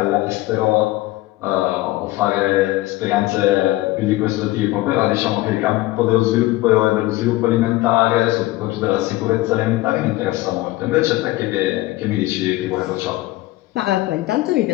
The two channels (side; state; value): right; quieter; 18.1 dB